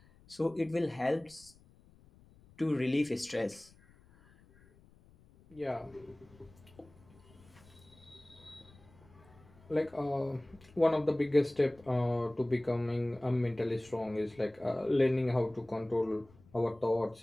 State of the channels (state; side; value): noise; left; rumble, 26 dB below the sound